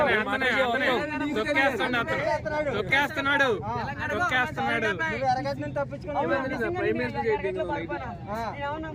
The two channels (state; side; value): identical; both; correlation 1.00